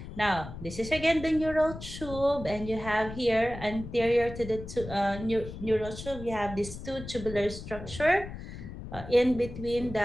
Now, this is again the neural tube, and you have here anterior to the neural tube, you have this 2 tubular structure in between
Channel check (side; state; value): left; noise; rumble, 11 dB below the sound